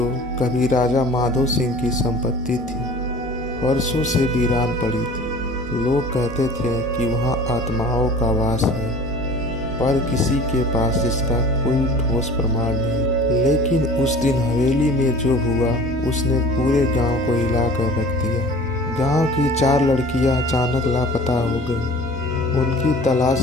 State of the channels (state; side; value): normal; both; correlation 0.44